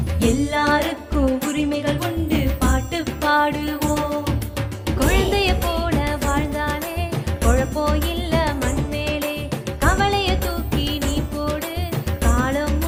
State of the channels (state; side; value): identical; both; correlation 1.00